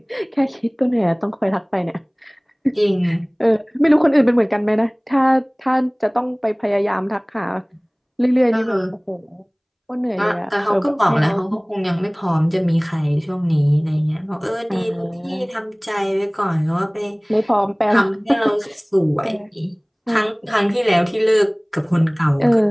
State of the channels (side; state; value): both; identical; correlation 1.00